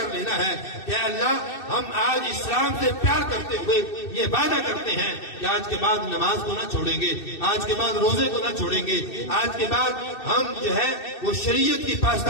لینا ہے کہ اللہ ہم آج اسلام سے پیار کرتے ہوئے یہ وعدہ کرتے ہیں کہ آج کے بعد نماز کو نہ چھوڑیں گے، آج کے بعد روزے کو نہ چھوڑیں گے، آج کے بعد ہم جو ہے وہ شریعت کی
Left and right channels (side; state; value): right; late; 2.6 ms